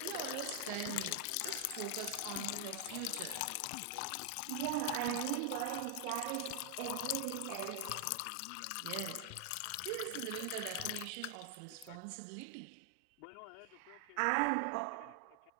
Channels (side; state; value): both; different; correlation 0.00